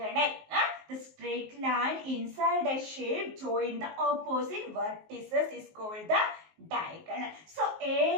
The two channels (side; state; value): left; late; 19 ms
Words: The straight line inside a shape join the opposite vertices is called the diagonal. So